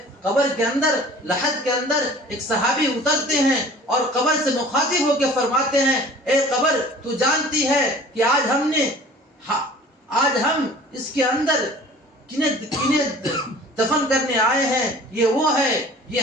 قبر کے اندر، لحد کے اندر ایک صحابی اترتے ہیں اور قبر سے مخاطب ہو کے فرماتے ہیں، اے قبر، تو جانتی ہے کہ آج ہم اس کے اندر کنہیں دفن کرنے آئے ہیں؟ یہ وہ ہے، یہ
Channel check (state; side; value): normal; both; correlation 0.46